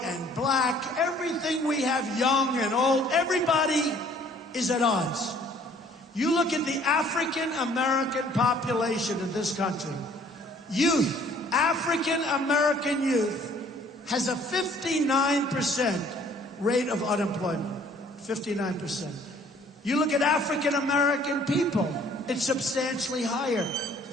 and black, everything we have, young and old, everybody is at odds. You look at the African-American population in this country. Youth, African-American youth, has a 59% rate of unemployment. 59%. You look at African-American people, it's substantially higher.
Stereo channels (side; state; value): both; normal; correlation 0.57